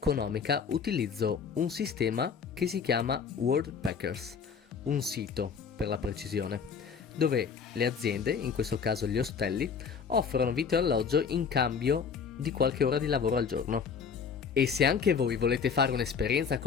utilizzo un sistema che si chiama Worldpackers, un sito per la precisione, dove le aziende, in questo caso gli ostelli, offrono vitto e alloggio in cambio di qualche ora di lavoro al giorno. E se anche voi volete fare un'esperienza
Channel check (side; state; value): right; quieter; 6.2 dB